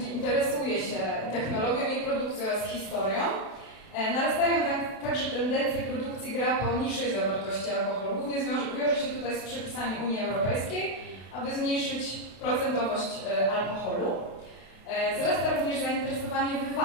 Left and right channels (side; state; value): right; late; 32 ms